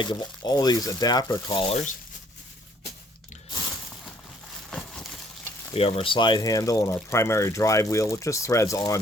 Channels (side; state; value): both; normal; correlation 0.64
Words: of all these adapter collars. We have our slide handle and our primary drive wheel, which just threads